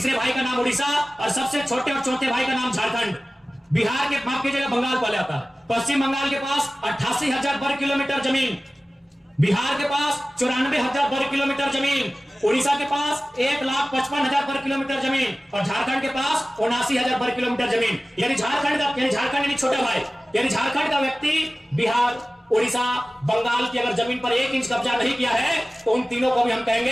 भाई का नाम उड़ीसा, और सबसे छोटे और चौथे भाई का नाम झारखंड। बिहार के माफ कीजिएगा, बंगाल पहले आता है। पश्चिम बंगाल के पास 88,000 वर्ग किलोमीटर जमीन, बिहार के पास 94,000 वर्ग किलोमीटर जमीन, उड़ीसा के पास 1,55,000 वर्ग किलोमीटर जमीन, और झारखंड के पास 79,000 वर्ग किलोमीटर जमीन। यानी झारखंड यानी छोटा भाई, यानी झारखंड का व्यक्ति बिहार, उड़ीसा, बंगाल की अगर जमीन पर 1 इंच कब्जा नहीं किया है तो उन तीनों को भी हम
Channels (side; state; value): both; normal; correlation 0.97